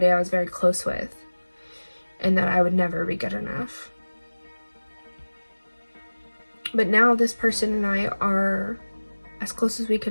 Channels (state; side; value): inverted; both; correlation -1.00